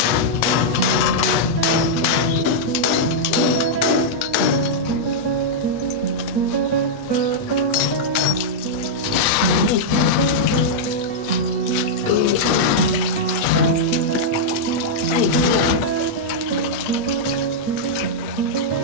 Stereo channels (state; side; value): late; right; 8.4 ms